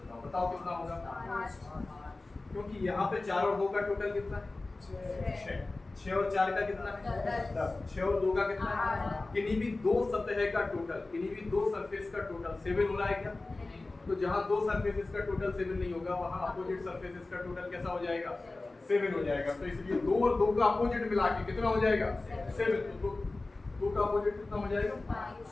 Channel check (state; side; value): quieter; right; 3.2 dB